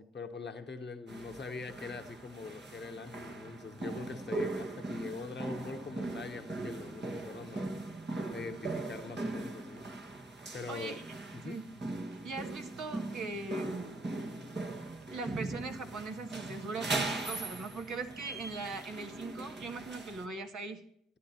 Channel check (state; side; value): normal; both; correlation 0.68